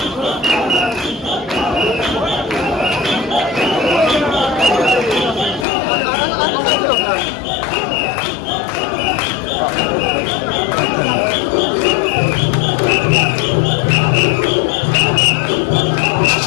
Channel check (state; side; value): drops out; right; at 5.7 s